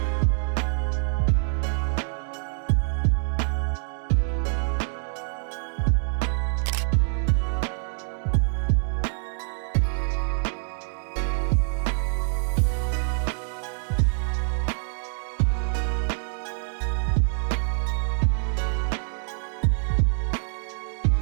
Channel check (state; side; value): silent; left; 61 dB below the other